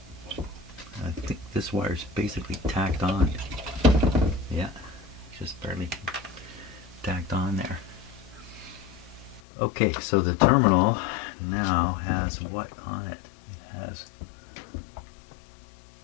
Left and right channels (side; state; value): right; drops out; at 9.4 s